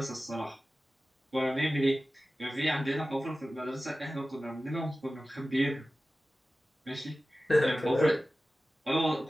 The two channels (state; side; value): normal; both; correlation 0.96